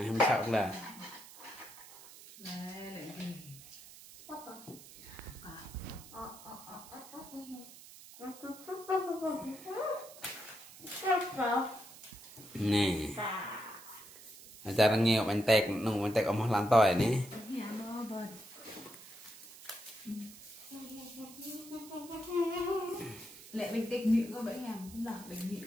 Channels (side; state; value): right; noise; hiss, 18 dB below the sound